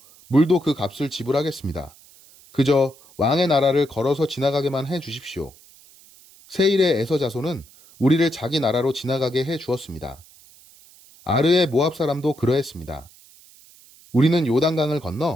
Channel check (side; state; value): right; noise; hiss, 25 dB below the sound